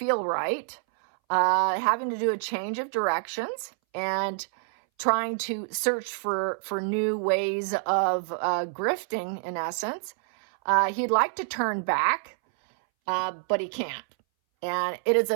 right. Having to do a change of directions and trying to search for new ways of grifting, in essence. He'd like to turn back, but he can't. And it is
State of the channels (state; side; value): silent; left; 60 dB below the other